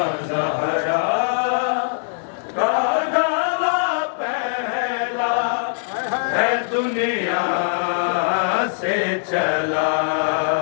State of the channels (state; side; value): silent; right; digital silence